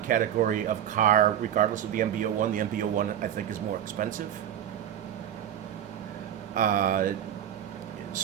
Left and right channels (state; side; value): quieter; left; 10.3 dB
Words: of car regardless of the MB01. The MB01 I think is more expensive.